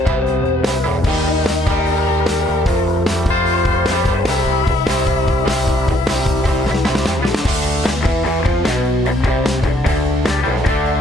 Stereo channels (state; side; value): normal; both; correlation 0.67